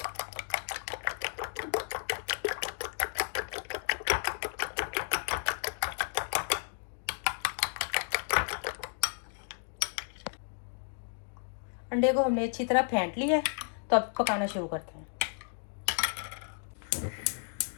अंडे को हमने अच्छी तरह फेंट लिया है। तो अब पकाना शुरू करते हैं।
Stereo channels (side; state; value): right; silent; 56 dB below the other